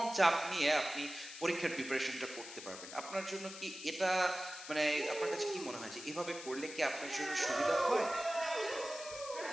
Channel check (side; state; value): left; noise; hiss, 12 dB below the sound